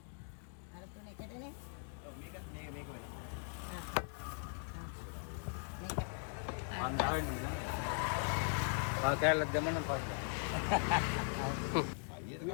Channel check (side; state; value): right; silent; 51 dB below the other